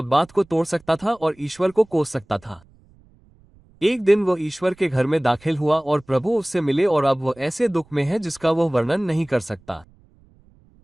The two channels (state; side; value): noise; right; rumble, 30 dB below the sound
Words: बात को तोड़ सकता था और ईश्वर को कोस सकता था। एक दिन वो ईश्वर के घर में दाखिल हुआ और प्रभु उससे मिले और अब वो ऐसे दुख में है जिसका वो वर्णन नहीं कर सकता।